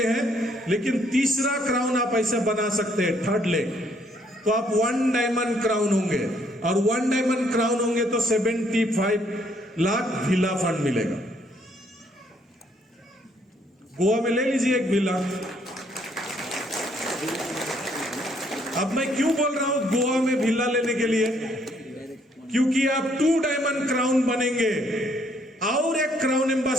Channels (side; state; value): both; normal; correlation 0.68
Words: हैं, लेकिन तीसरा क्राउन आप ऐसा बना सकते हैं, 3rd लेग। तो आप 1 डायमंड क्राउन होंगे, और 1 डायमंड क्राउन होंगे तो 75 लाख विला फंड मिलेगा। गोवा में ले लीजिए एक विला। अब मैं क्यों बोल रहा हूं गोवा में विला लेने के लिए? क्योंकि आप 2 डायमंड क्राउन बनेंगे और एक क्राउन